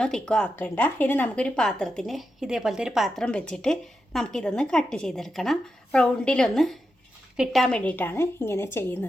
തിക്കോ ആക്കണ്ട. ഇനി നമുക്കൊരു പാത്രത്തിന് ഇതേപോലത്തെ ഒരു പാത്രം വെച്ചിട്ട് നമുക്കിതൊന്ന് കട്ട് ചെയ്തെടുക്കണം. റൗണ്ടിലൊന്ന് കിട്ടാൻ വേണ്ടിയിട്ടാണ് ഇങ്ങനെ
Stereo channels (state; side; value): normal; both; correlation 0.88